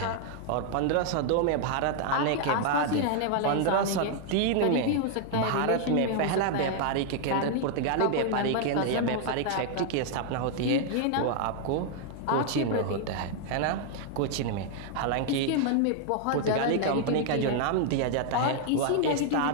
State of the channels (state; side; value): different; both; correlation 0.00